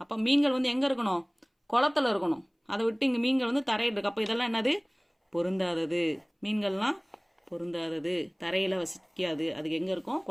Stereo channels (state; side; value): identical; both; correlation 1.00